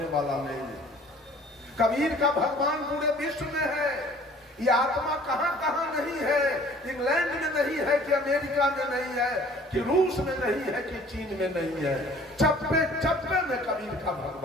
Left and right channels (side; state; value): both; normal; correlation 0.52